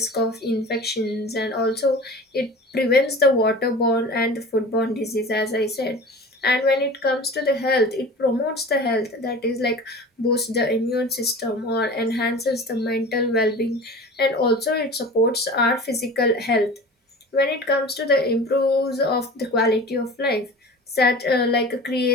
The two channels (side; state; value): both; normal; correlation 0.37